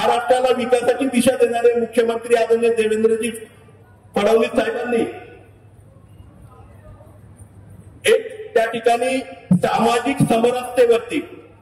विकासाची दिशा देणारे मुख्यमंत्री आदरणीय देवेंद्रजी फडणवीस साहेबांनी एक त्या ठिकाणी सामाजिक समरसतेवरती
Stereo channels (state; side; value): identical; both; correlation 1.00